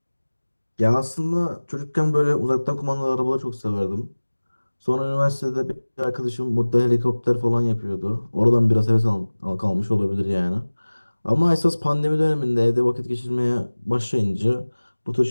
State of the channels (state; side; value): inverted; both; correlation -1.00